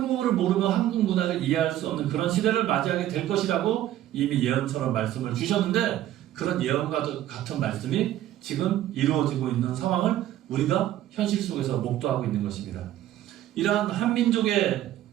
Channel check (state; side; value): quieter; left; 12.9 dB